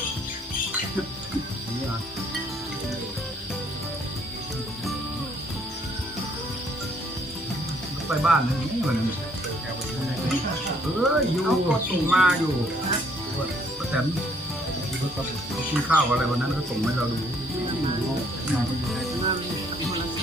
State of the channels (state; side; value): normal; both; correlation 0.64